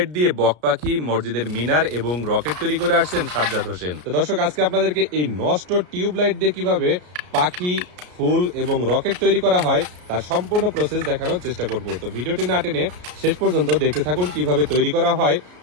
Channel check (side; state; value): left; late; 33 ms